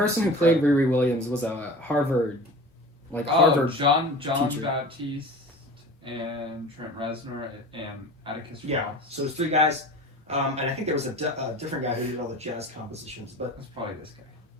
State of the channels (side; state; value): both; normal; correlation 0.37